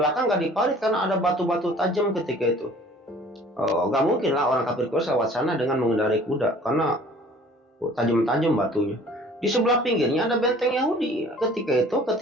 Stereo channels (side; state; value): both; normal; correlation 0.50